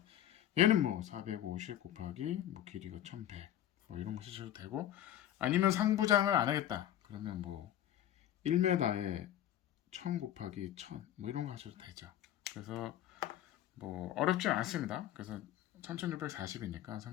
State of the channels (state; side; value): quieter; right; 11.8 dB